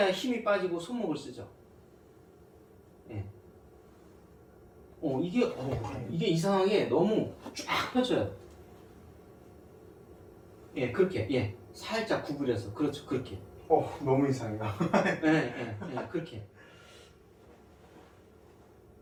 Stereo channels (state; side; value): identical; both; correlation 1.00